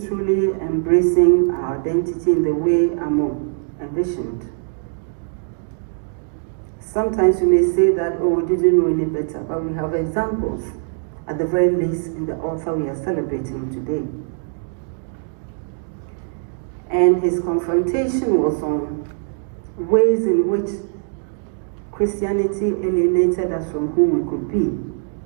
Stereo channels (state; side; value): silent; left; digital silence